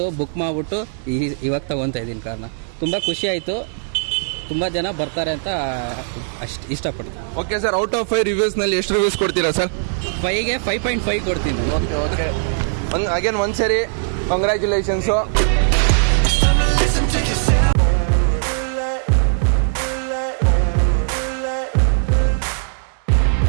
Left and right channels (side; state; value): left; silent; digital silence